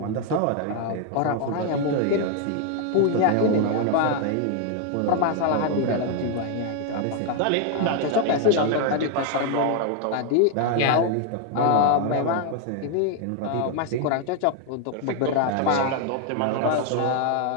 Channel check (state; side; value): different; both; correlation 0.00